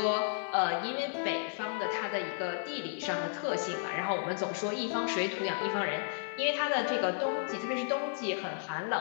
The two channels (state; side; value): silent; right; 56 dB below the other